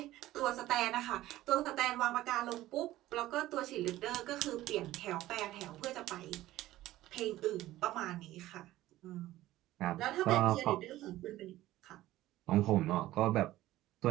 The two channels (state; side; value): quieter; left; 15.6 dB